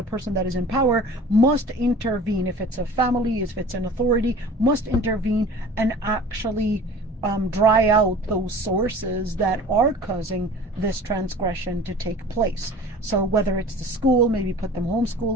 person that is in power, must intervene. If it's a family, if it's an authority, must intervene and actually dry out those sources that are causing this transgression to take place. So whether it's the school, maybe put them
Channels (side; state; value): both; normal; correlation 0.42